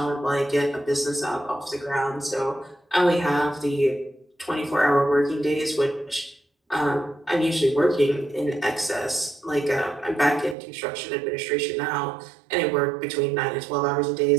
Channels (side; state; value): left; drops out; at 10.6 s